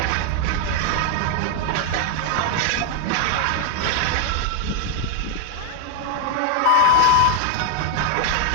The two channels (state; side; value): different; both; correlation 0.00